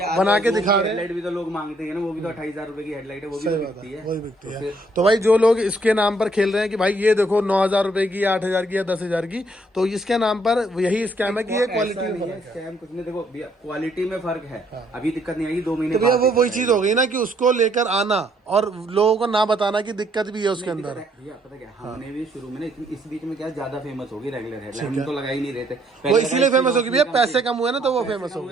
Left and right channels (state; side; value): normal; both; correlation 0.68